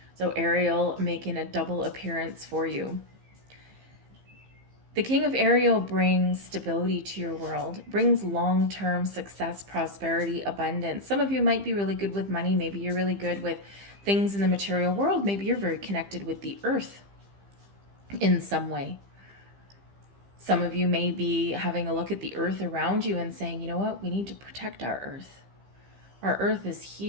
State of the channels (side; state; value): left; late; 15 ms